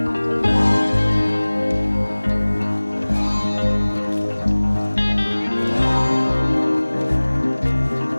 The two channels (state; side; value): inverted; both; correlation -1.00